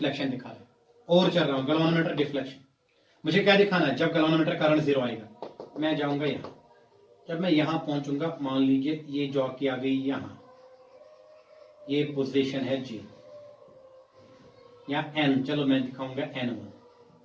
दिखा रहा है, और चल रहा हूं गैल्वानोमीटर डिफ्लेक्शन। मुझे क्या दिखाना है, जब गैल्वानोमीटर करंट जीरो आएगा मैं जाऊंगा यहां, जब मैं यहां पहुंचूंगा, मान लीजिए ये जॉकी आ गई यहां, ये पोजीशन है G या N, चलो मैं दिखाऊंगा N1,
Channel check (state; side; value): identical; both; correlation 1.00